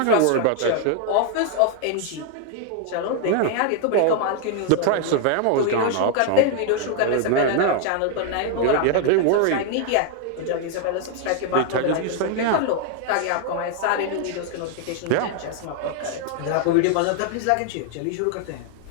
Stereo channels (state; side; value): different; both; correlation 0.00